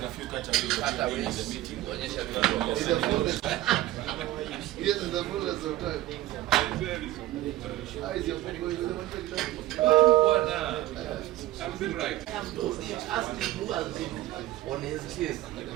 a few categories in the meeting. Kuonyesha Yes, in the fullness of time. How is your food going? I'm doing right. Ask him who has been on his case.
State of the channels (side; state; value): left; quieter; 15.5 dB